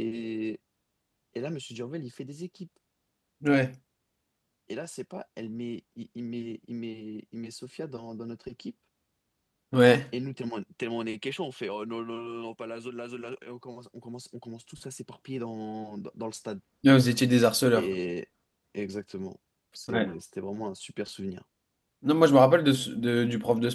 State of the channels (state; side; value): identical; both; correlation 1.00